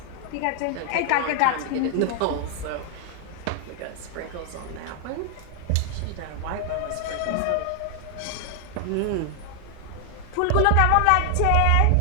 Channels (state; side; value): different; both; correlation 0.00